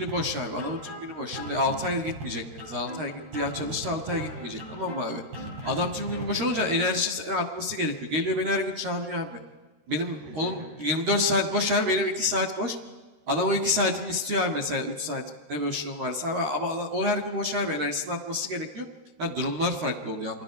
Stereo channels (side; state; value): left; late; 13 ms